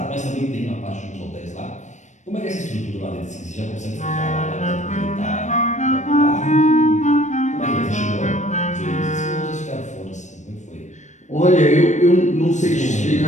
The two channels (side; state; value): right; late; 0.35 ms